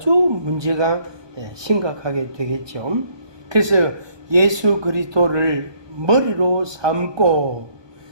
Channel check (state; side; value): late; left; 1.2 ms